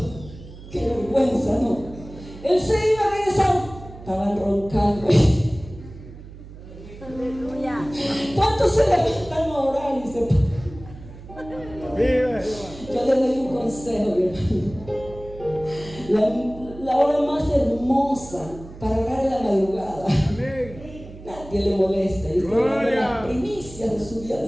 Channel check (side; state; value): right; noise; hum, 16 dB below the sound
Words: Qué vergüenza, ¿no? Él se iba a regresar, estaban roncando. Aleluya. ¿Cuántos se levantan a orar y se Vive. Yo les doy un consejo, mi hermano. La hora más hermosa para orar en la madrugada. Amén. Nadie le molesta. Y está dando las primicias de su día